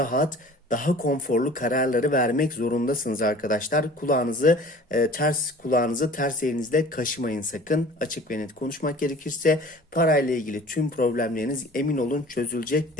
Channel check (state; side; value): normal; both; correlation 0.45